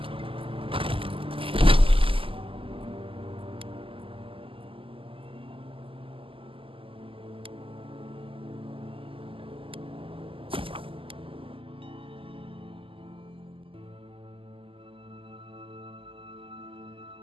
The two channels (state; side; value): late; left; 0.26 ms